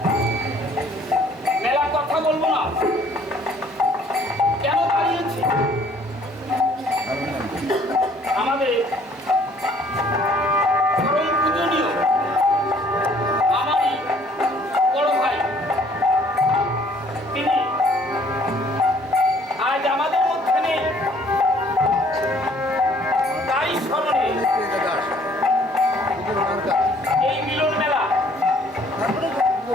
মেলা কথা বলবো না, কেন দাঁড়িয়েছি? আমাদের পরম পূজনীয় আমারই বড় ভাই, তিনি আজ আমাদের মধ্যে নেই। তাই স্মরণে এই মিলন মেলা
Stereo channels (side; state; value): both; normal; correlation 0.59